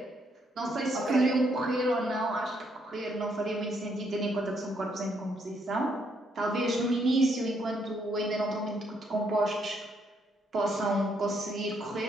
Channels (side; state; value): both; normal; correlation 0.73